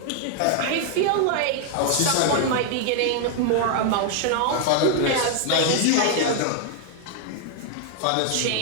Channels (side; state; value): both; different; correlation 0.00